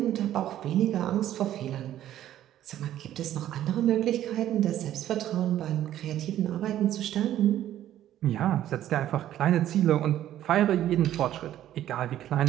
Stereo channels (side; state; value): left; quieter; 12.2 dB